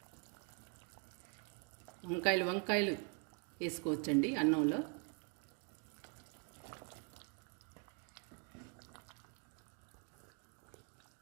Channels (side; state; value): left; quieter; 36.8 dB